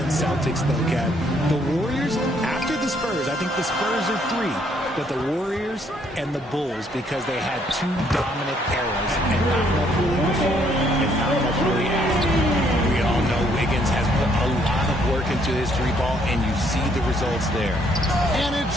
Celtics, though, Kev. The Warriors, after the Spurs, I think the Spurs are 3, but the Warriors and the Bulls, because they had 2 dominant eras, and not much really before, and not much really after. We all know Wiggins has put a lot of work into his 3-ball, and you see the results there. And it's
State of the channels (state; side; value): normal; both; correlation 0.68